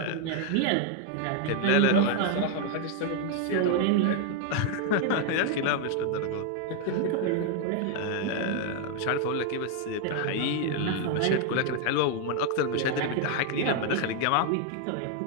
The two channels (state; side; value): different; both; correlation 0.00